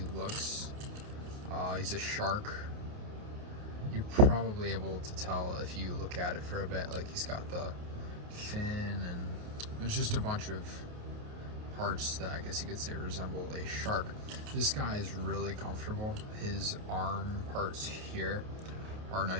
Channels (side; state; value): left; late; 28 ms